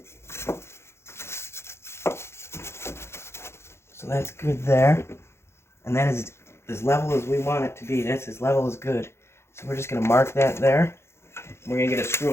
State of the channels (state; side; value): late; right; 0.12 ms